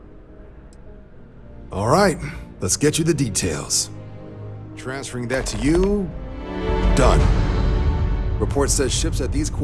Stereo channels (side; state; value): both; identical; correlation 1.00